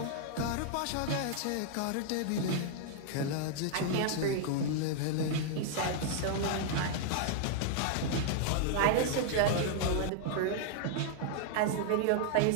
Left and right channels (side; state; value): both; different; correlation 0.00